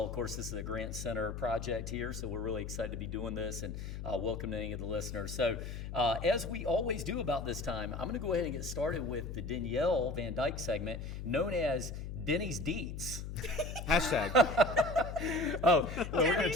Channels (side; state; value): left; noise; hum, 7 dB below the sound